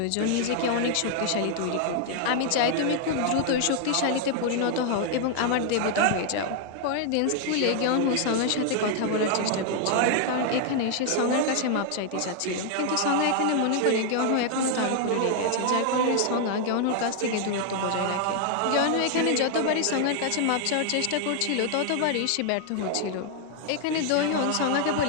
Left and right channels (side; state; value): both; different; correlation 0.00